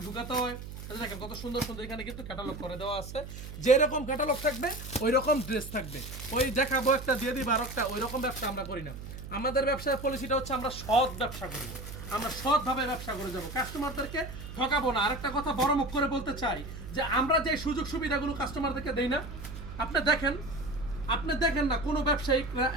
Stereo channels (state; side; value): noise; right; hum, 10 dB below the sound